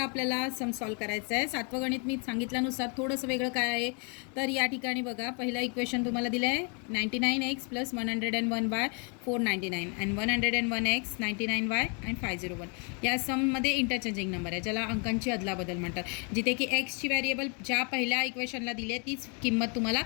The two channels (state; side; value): quieter; right; 36.6 dB